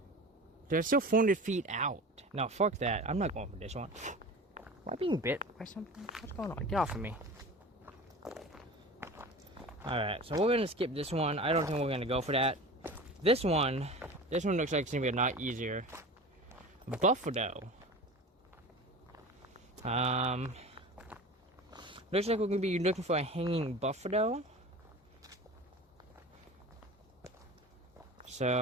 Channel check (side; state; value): both; normal; correlation 0.35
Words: they're still 400 feet out. No, fuck that. I'm not going for this one. Am I being bit by something? What's going on? Get off of me. Alright, so we're going to skip this one. I don't think we're going to go for that. This one looks like it's going to be a lot easier. Buffalo. Looks like we're going to be looking for a hanging buffalo.